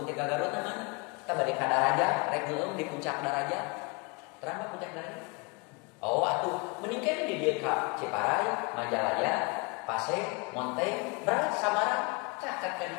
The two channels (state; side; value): quieter; right; 30.4 dB